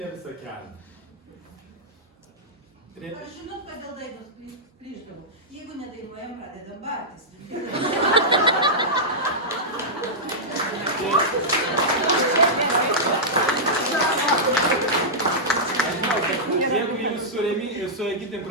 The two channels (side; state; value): both; normal; correlation -0.11